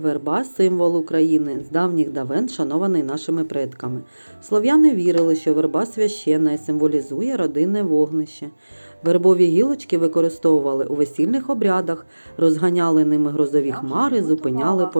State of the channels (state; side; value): inverted; both; correlation -1.00